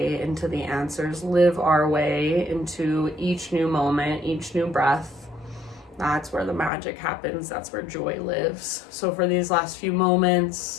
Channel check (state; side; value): drops out; right; at 6.7 s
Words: into the answers, live our way into each new moment, each new breath. That's where the magic happens. That's where joy lives. So for these last few